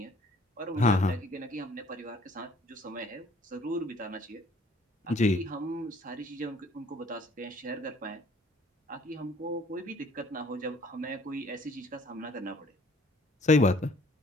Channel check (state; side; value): normal; both; correlation 0.57